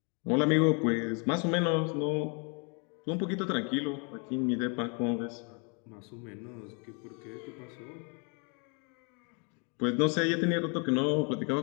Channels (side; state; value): right; quieter; 35.8 dB